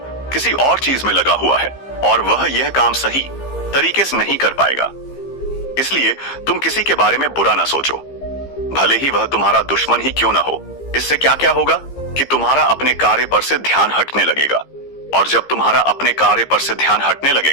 किसी और चीज में लगा हुआ है और वह यह काम सही तरीके से नहीं कर पाएगा। इसलिए तुम किसी के बारे में बुरा ना सोचो, भले ही वह तुम्हारा दुश्मन ही क्यों ना हो। इससे क्या क्या होगा कि तुम्हारा अपने कार्य पर से ध्यान हटने लगेगा, और जब तुम्हारा अपने कार्य पर से ध्यान हटने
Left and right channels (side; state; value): right; late; 15 ms